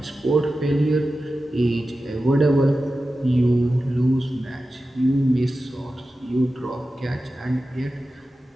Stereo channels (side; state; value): both; normal; correlation 0.93